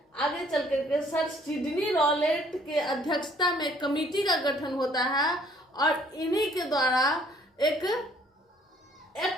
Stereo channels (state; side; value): normal; both; correlation 0.60